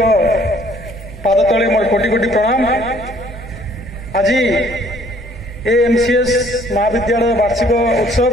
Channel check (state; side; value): noise; right; hum, 15 dB below the sound